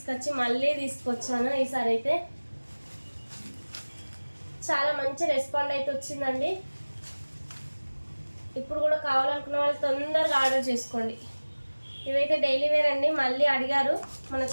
మళ్ళీ తీసుకొచ్చాను. ఈసారి అయితే చాలా మంచి రెస్పాండ్ అయితే వచ్చిందండి. ఇప్పుడు కూడా కావాలనుకున్న వాళ్ళు తొందరగా ఆర్డర్ చేసుకోండి. ఇవైతే డైలీ వేర్ అండి, మళ్ళీ అడిగారు మన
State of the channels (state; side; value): inverted; both; correlation -1.00